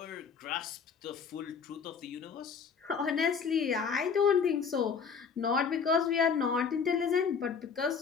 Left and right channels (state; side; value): quieter; right; 6.1 dB